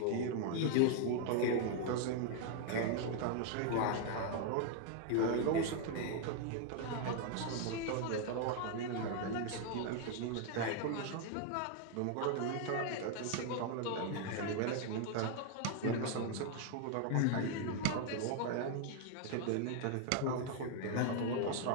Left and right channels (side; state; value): both; different; correlation 0.00